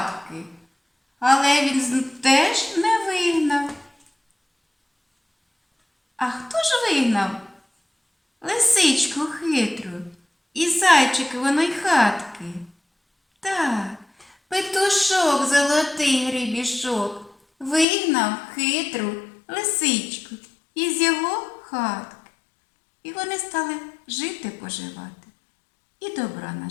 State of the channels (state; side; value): drops out; right; at 17.9 s